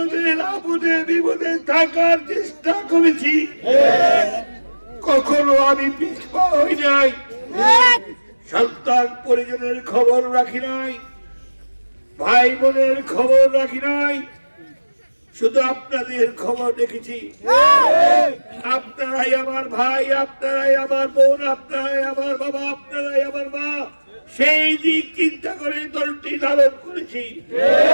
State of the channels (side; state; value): both; inverted; correlation -1.00